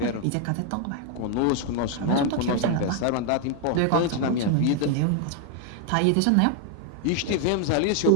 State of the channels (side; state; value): both; different; correlation 0.00